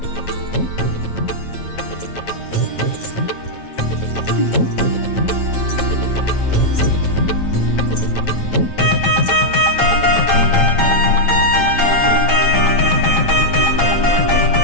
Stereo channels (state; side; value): late; right; 8.9 ms